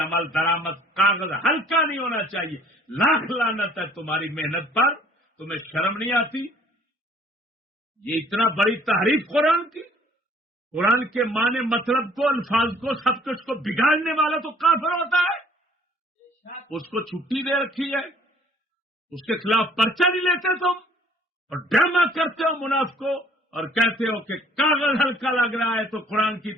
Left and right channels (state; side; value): normal; both; correlation 0.57